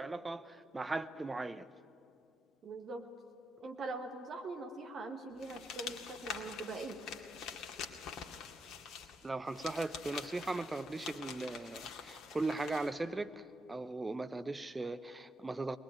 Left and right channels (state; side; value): normal; both; correlation 0.83